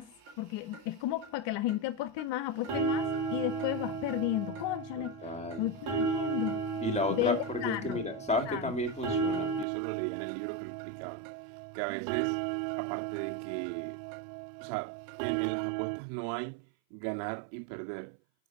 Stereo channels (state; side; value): drops out; left; at 9.7 s